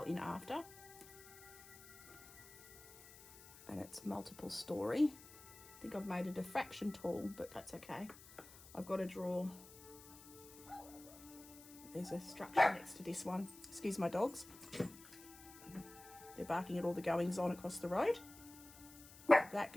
in after. And it's multiple story. I think I've made it a fraction tall, but that's okay. I've got to draw... There's a structure next to this one. Excuse my dogs. They're barking at all the goings on across the road. That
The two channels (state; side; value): noise; left; hiss, 18 dB below the sound